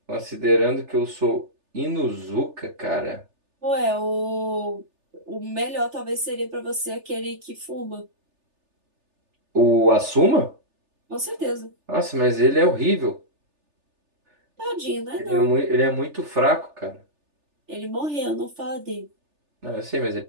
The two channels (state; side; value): late; left; 3.4 ms